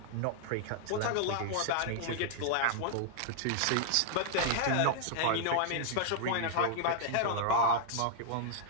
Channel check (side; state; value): both; different; correlation -0.01